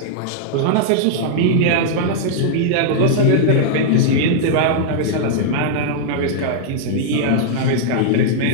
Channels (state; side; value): different; both; correlation -0.01